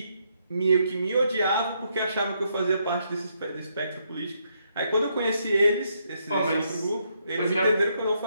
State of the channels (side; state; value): both; inverted; correlation -0.76